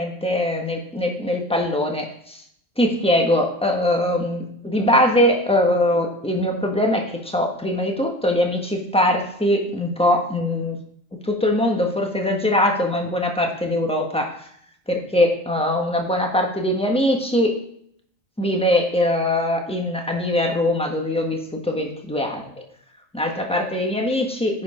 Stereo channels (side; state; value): both; normal; correlation 0.39